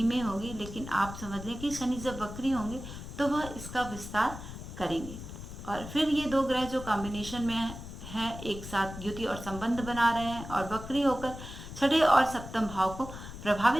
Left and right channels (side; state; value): left; noise; rumble, 11 dB below the sound